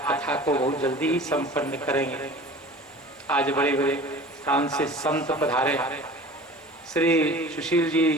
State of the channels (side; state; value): both; normal; correlation 0.41